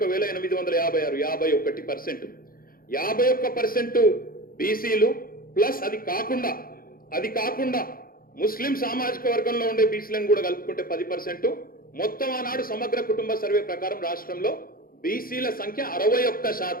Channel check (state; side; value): late; right; 0.42 ms